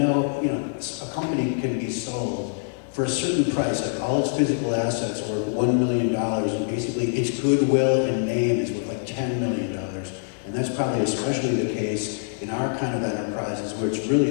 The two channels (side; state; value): right; silent; digital silence